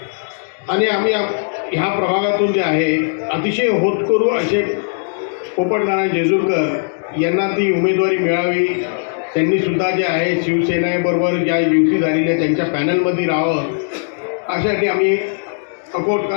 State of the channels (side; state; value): right; silent; digital silence